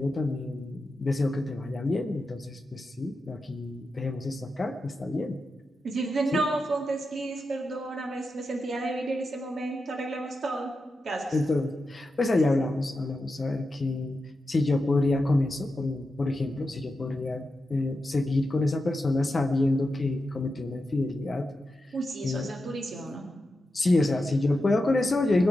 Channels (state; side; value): normal; both; correlation 0.89